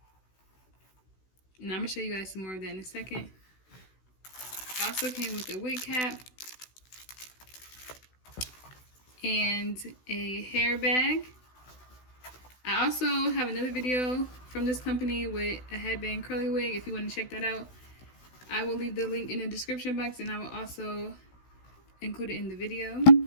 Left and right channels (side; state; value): right; late; 16 ms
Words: and I'm gonna show you guys some more of that in a second. It also came with a wig cap and a hair bag. I also have another video from this company with a headband curly wig. If you want to check that out, I will leave the link in the description box, and I will also include it in the video.